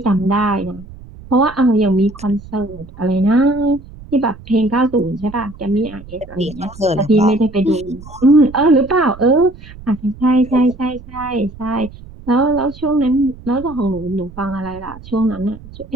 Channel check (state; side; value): noise; right; rumble, 17 dB below the sound